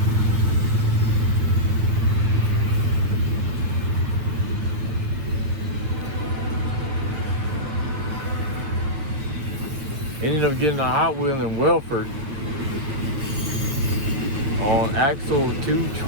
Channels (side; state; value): left; late; 7.2 ms